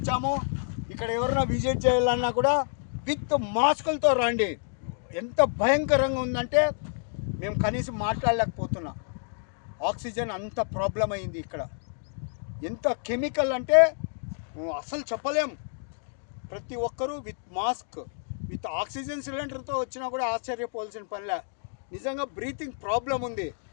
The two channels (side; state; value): right; silent; digital silence